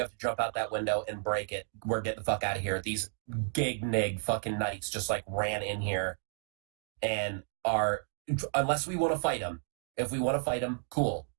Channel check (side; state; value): left; silent; 56 dB below the other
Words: have to jump out that window and break it. We're getting the fuck out of here. These gig nig fucking knights just like ran in here and are, unless we want to fight them. If we want to fight them, cool,